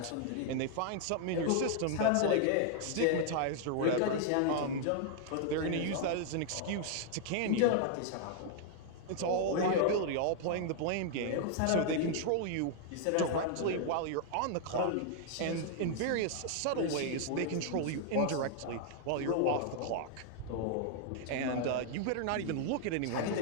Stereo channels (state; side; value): different; both; correlation 0.00